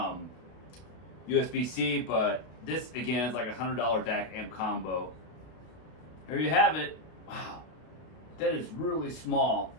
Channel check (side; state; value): right; late; 32 ms